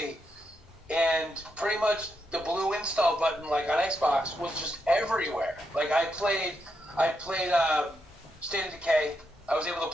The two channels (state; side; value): normal; both; correlation 0.82